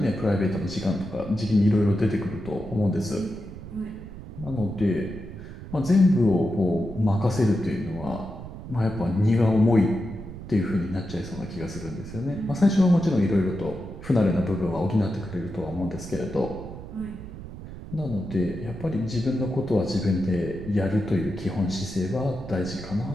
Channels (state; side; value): noise; right; rumble, 12 dB below the sound